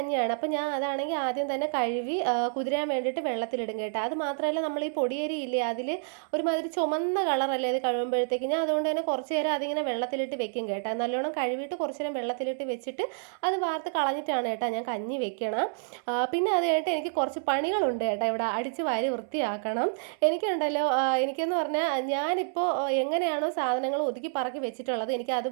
അപ്പോൾ ഞാൻ അതാണെങ്കിൽ ആദ്യം തന്നെ കഴുകി കുതിരാൻ വേണ്ടിയിട്ട് വെള്ളത്തിലിടും കേട്ടോ. അത് മാത്രമല്ല, നമ്മൾ ഈ പൊടിയരി ഇല്ലേ, അതിൽ ഒരുമാതിരി ചുമന്ന കളറല്ലേ അത് കഴുകുമ്പോഴത്തേക്ക്. ഞാൻ അതുകൊണ്ട് തന്നെ കുറച്ച് നേരം അതിങ്ങനെ വെള്ളത്തിലിട്ട് വെക്കും കേട്ടോ. നല്ലോണം കഴുകിയിട്ട് കുറച്ച് നേരം വെള്ളത്തിലിട്ട് വെച്ചിട്ട് അത് വാർത്ത് കളഞ്ഞിട്ടാണ് കേട്ടോ ഞാൻ കഞ്ഞി വെക്കണം. പിന്നെ അത് കഴിഞ്ഞിട്ട് എനിക്ക് കുറച്ച് പണികളുണ്ട് കേട്ടോ. ഇവിടെ അടിച്ച് വാരി വൃത്തിയാക്കണം. എനിക്കുണ്ടല്ലോ, എനിക്കെന്ന് പറഞ്ഞാൽ ഞാനിപ്പോൾ എങ്ങനെയാണോ സാധനങ്ങൾ ഒതുക്കി പറക്കി വെച്ചിട്ടുള്ളത്, എനിക്ക്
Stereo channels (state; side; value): silent; left; 59 dB below the other